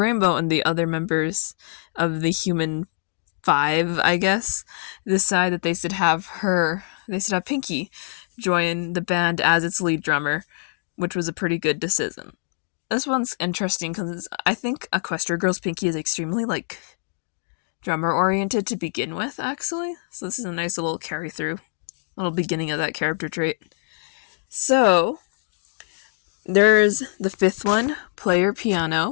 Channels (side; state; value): right; silent; 63 dB below the other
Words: and the other members of the Human Five, I guess, decide that they should have Pinkie join the band as its lead drummer, which was a pretty good decision. This one's interesting because I think Equestria Girls Pinkie is extremely, drummer oriented to begin with, actually. So this is a nice little carry through, little beginning of that character trait. So there's the fifth one, Player